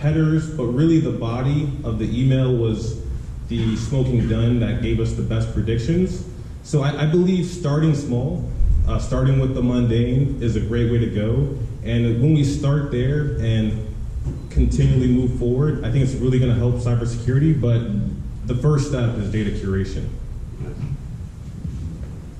but really the body of the email was the smoking gun that gave us the best predictions. So I believe starting small, starting with the mundane is a great way to go. And when we start there and continually move forward, I think it's really going to help cybersecurity, but the first step is data curation.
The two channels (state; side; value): identical; both; correlation 1.00